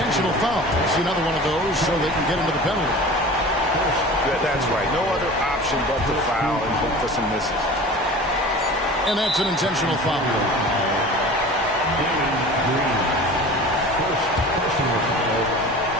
foul. See another one of those so they can get into the penalty. That's right. No other option but to foul and hope for some misses. And that's an intentional foul.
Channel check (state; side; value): normal; both; correlation 0.38